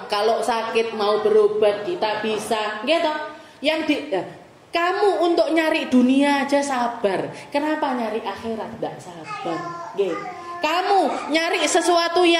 Kalau sakit mau berobat kita bisa. Nggih toh? Kamu untuk nyari dunia aja sabar. Kenapa nyari akhirat ndak sabar? Kamu nyari sesuatu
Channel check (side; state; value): both; identical; correlation 1.00